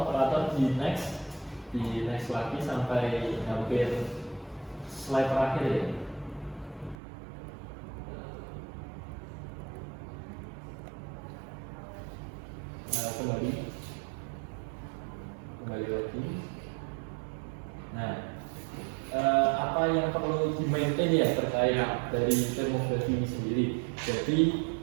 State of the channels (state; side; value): drops out; left; at 7.0 s